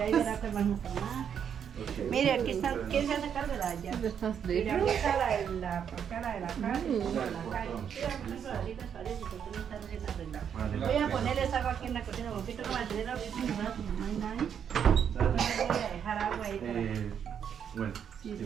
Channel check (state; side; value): quieter; left; 8.1 dB